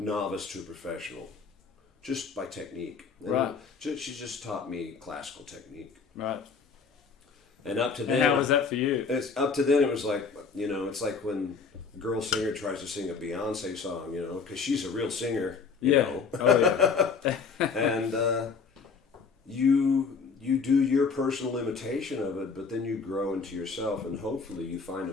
to a professional, just by technique. And right. She just taught me classical technique. Right. And up to then, how was that for you? Up to then, it was like, it's like when a girl singer tries to sing a Beyonce song, because she's a real singer, you know. Oh, yeah. And you do your personal imitation of it, but then you grow into yourself, and hopefully you find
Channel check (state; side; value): quieter; right; 5.3 dB